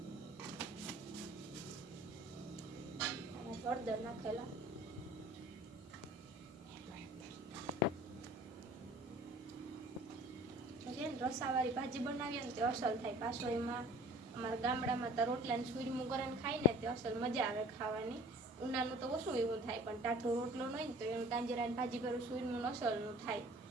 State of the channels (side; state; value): both; normal; correlation 0.47